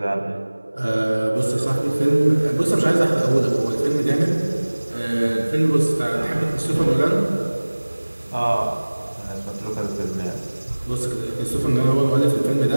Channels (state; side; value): inverted; both; correlation -1.00